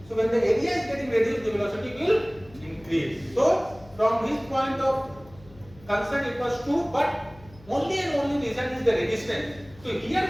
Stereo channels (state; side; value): noise; left; hum, 23 dB below the sound